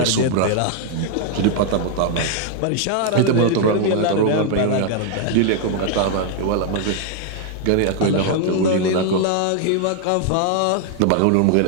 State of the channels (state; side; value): different; both; correlation 0.00